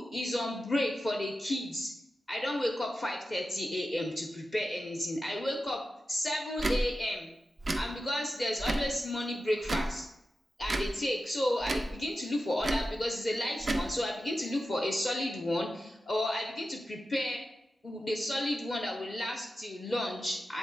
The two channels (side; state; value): both; normal; correlation 0.92